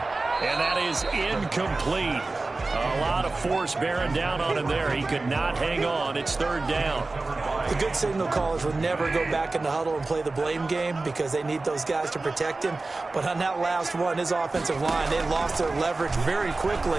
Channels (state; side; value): quieter; left; 3.4 dB